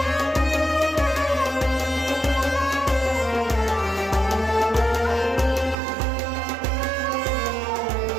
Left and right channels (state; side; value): drops out; left; at 5.8 s